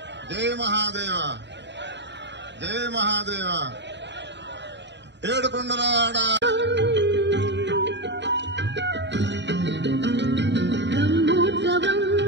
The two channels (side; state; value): left; late; 0.52 ms